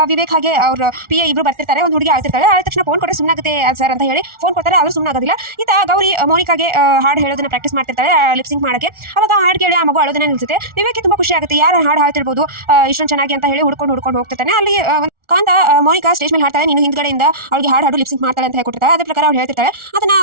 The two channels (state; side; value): late; left; 1.4 ms